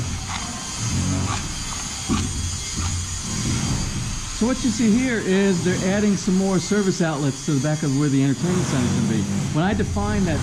So what you see here is they're adding some more service outlets to the back of where the entertainment center is going to be. When I defined that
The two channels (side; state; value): both; identical; correlation 1.00